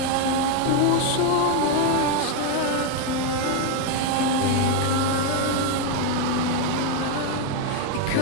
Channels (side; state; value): both; different; correlation 0.01